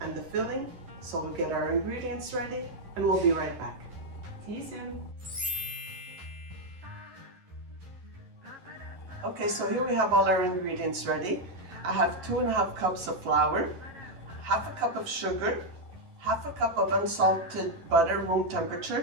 and the filling. So we'll get our ingredients ready and we'll be right back. See you soon. Okay, so here we have all our ingredients ready. I have 2.5 cups of flour, half a cup of sugar, half a cup of unsalted butter room temperature,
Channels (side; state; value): left; late; 11 ms